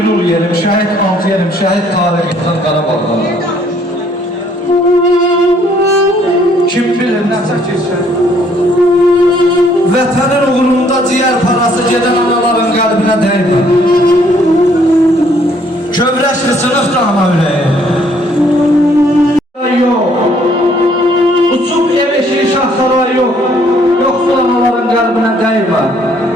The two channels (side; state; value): both; normal; correlation 0.64